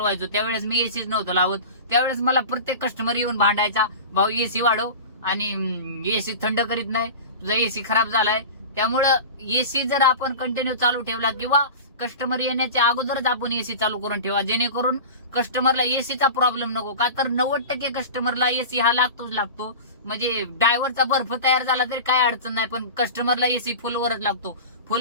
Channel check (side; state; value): both; inverted; correlation -0.32